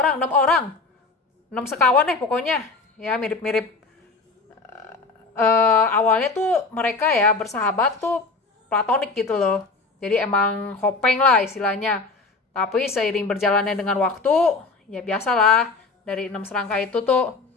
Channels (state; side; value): quieter; right; 4.0 dB